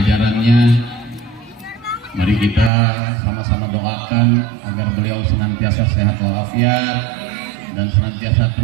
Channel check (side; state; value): left; drops out; at 2.7 s